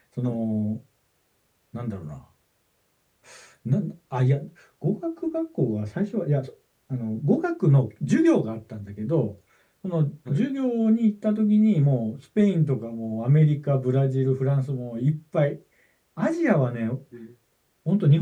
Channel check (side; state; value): both; identical; correlation 1.00